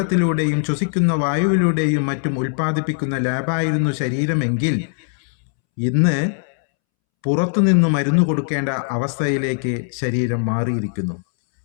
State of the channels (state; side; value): silent; right; 66 dB below the other